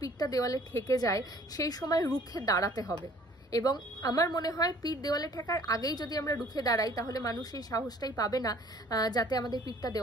দেওয়ালে ঠেকে যায়, সেই সময় রুখে দাঁড়াতে হবে। এবং আমার মনে হয় পিঠ দেওয়ালে ঠেকার আগেই যদি আমরা রুখে দাঁড়াই, তাহলে মানুষ এই সাহসটাই পাবে না যাতে আমাদের পিঠটা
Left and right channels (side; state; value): both; normal; correlation 0.55